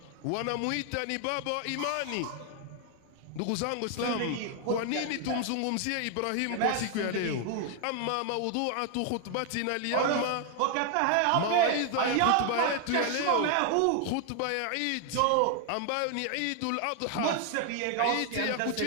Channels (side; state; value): both; different; correlation 0.00